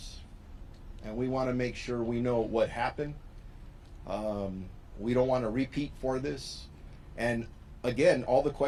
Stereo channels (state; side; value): identical; both; correlation 1.00